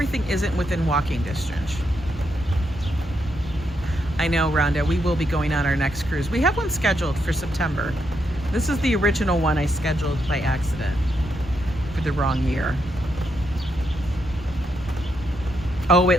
isn't within walking distance. I know, Rhonda, we will be going on our next cruise. We have one scheduled for September. This is the original one I scheduled by accident for the wrong year. Oh,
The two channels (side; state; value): both; normal; correlation 0.80